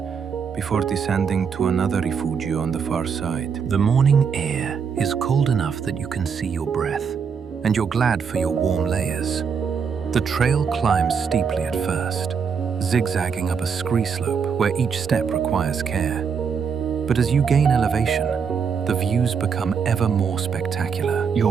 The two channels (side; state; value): left; quieter; 6.4 dB